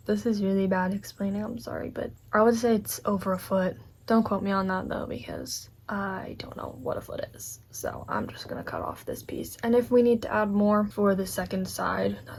This is really bad explaining, I'm sorry, but I would say it's over a foot. Don't quote me on that though, because I don't know what a foot is. So I'm just gonna cut off this piece. And if we need to add more for the second side,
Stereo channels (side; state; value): both; identical; correlation 1.00